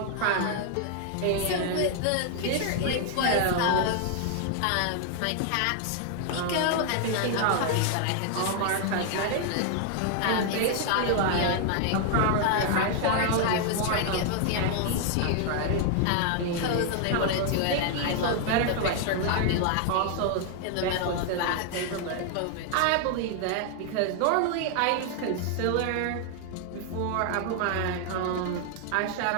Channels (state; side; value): different; both; correlation 0.00